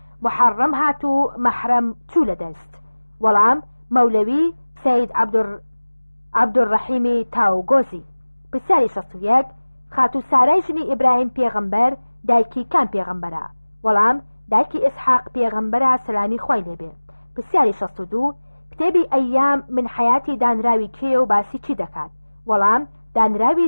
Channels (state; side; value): inverted; both; correlation -1.00